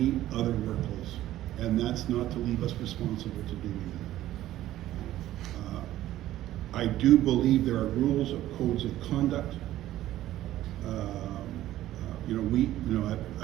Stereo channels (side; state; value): left; quieter; 14.1 dB